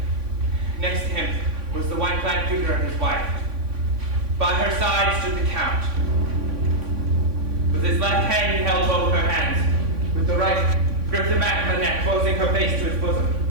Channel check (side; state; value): left; late; 3.5 ms